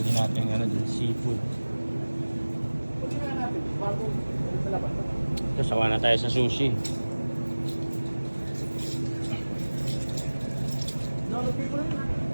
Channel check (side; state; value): both; inverted; correlation -1.00